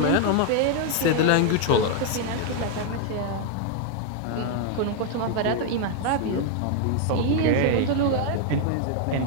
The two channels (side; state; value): both; different; correlation 0.00